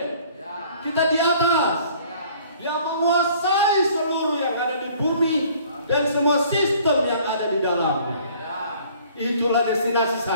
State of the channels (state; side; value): inverted; both; correlation -0.55